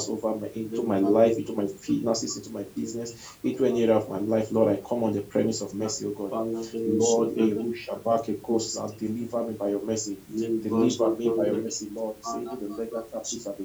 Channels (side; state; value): both; identical; correlation 1.00